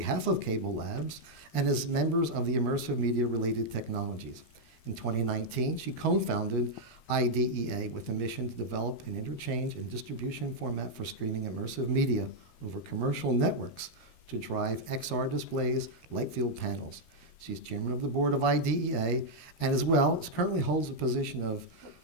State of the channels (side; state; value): right; late; 13 ms